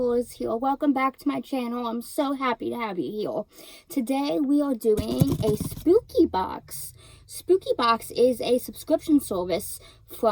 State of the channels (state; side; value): identical; both; correlation 1.00